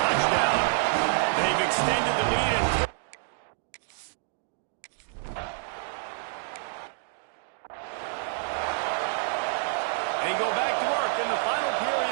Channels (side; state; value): left; silent; digital silence